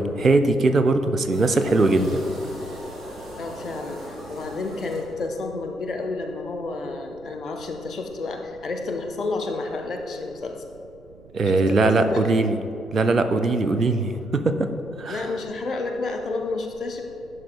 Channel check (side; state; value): right; noise; rumble, 25 dB below the sound